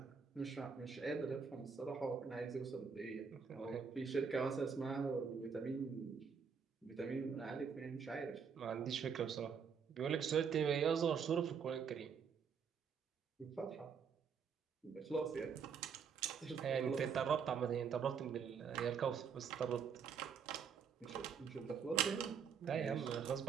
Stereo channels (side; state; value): left; quieter; 6.4 dB